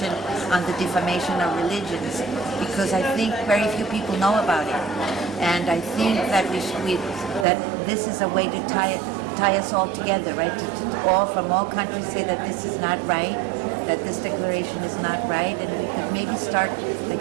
on the defamation of religions, because I think very few people know about it. And I think that that this is a way to tie us all together, right? To all from all countries say that this is not right, that this declaration is not right, and we could maybe start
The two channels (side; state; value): left; drops out; at 7.5 s